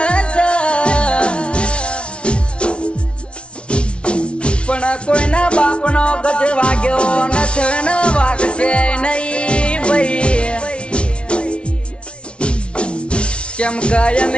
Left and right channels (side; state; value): right; late; 0.059 ms